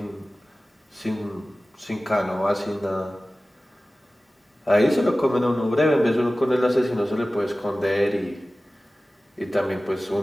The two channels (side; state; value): both; normal; correlation 0.96